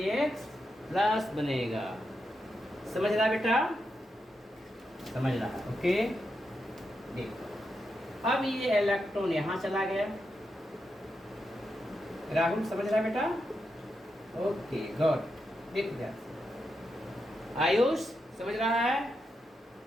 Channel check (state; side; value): normal; both; correlation 0.85